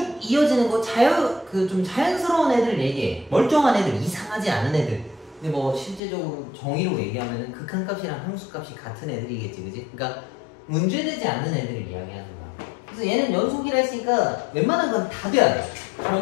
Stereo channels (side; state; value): right; drops out; at 6.0 s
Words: 이어지는 거, 좀 자연스러운 애들 얘기해. 멀쩡한 애들, 이상하지 않은 애들. 근데 뭐 실제적으로 정의로 얘기하면은 극한값이랑 함수값이 같은 애들이겠지, 그지? 그러니까 문제되지 않는 애들을 이야기하는 거야. 그래서 얘는 연속이라 했으니까 웬만한 건 다 돼야 돼.